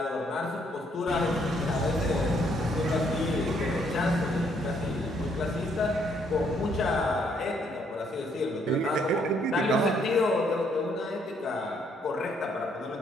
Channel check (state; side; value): normal; both; correlation 0.69